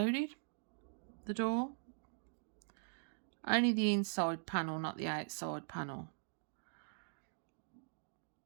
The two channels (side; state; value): left; silent; digital silence